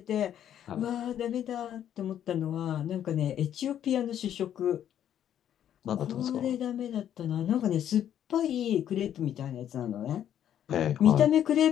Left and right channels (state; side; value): quieter; right; 10.3 dB